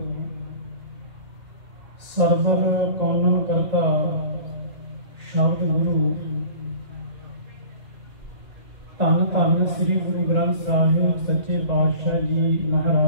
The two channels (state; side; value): late; left; 1.9 ms